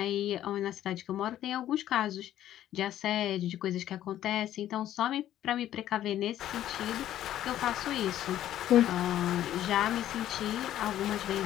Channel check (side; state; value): right; quieter; 12.3 dB